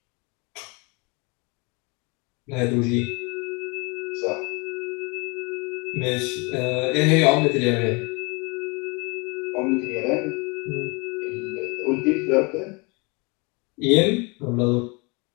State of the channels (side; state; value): right; quieter; 29.2 dB